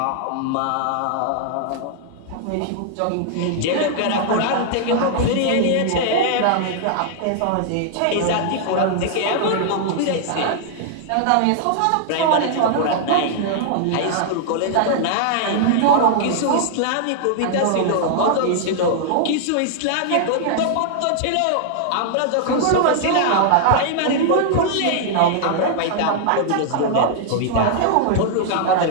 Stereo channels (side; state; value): both; different; correlation -0.01